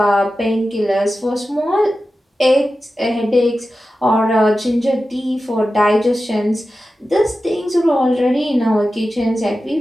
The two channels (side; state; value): both; normal; correlation 0.93